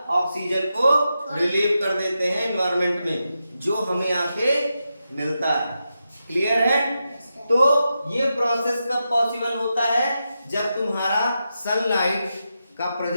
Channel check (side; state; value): both; inverted; correlation -0.88